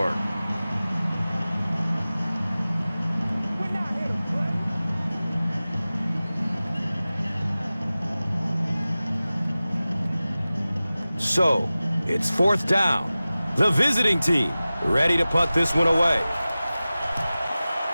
So, it's 4th down. The visiting team ready to punt this one away.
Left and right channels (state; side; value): inverted; both; correlation -0.97